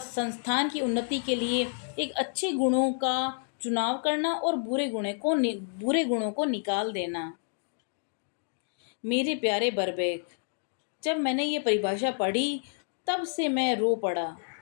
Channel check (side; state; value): right; silent; 58 dB below the other